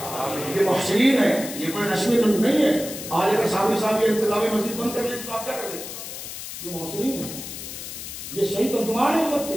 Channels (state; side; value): noise; left; hiss, 9 dB below the sound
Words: یہ محسنین ہے، یہ کوئی رسمی نہیں ہے۔ آج اگر صحابی صاحب یہ انتظامی مسجد بند کر لیں تو آپ کیا کر لیں؟ یہ محسنین ہے، یہ صحیح ترجمان ہے امت